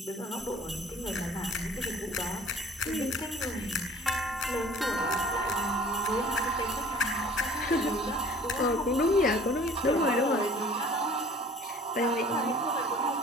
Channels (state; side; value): normal; both; correlation 0.51